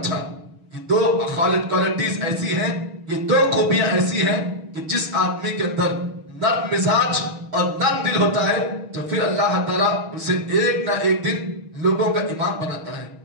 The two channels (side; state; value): left; late; 6.2 ms